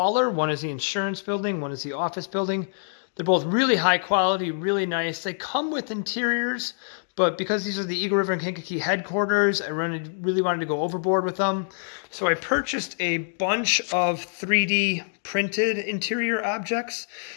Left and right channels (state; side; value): silent; right; digital silence